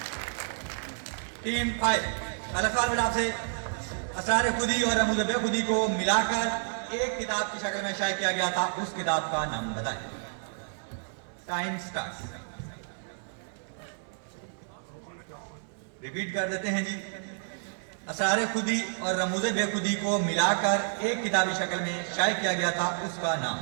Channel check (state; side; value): silent; left; 58 dB below the other